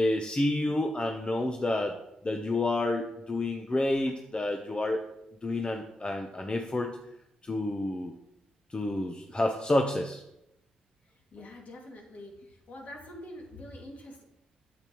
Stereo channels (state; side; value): normal; both; correlation 0.88